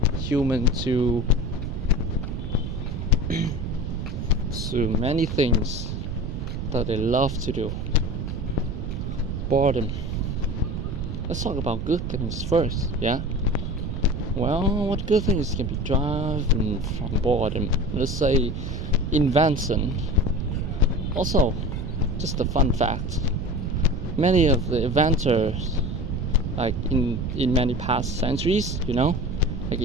human to many things that they love to do. Boredom. Let's talk about good things first, yeah? Well, what good things can be driven from boredom? Let's say invention. Also, just a fun fact, many of the inventors, like in many past centuries, like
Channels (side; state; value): right; noise; rumble, 4 dB below the sound